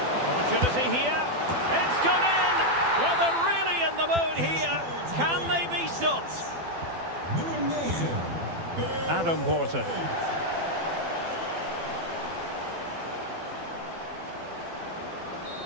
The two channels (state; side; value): late; left; 12 ms